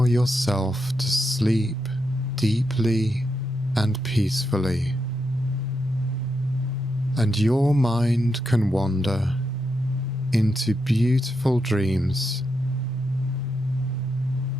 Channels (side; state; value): both; normal; correlation 0.83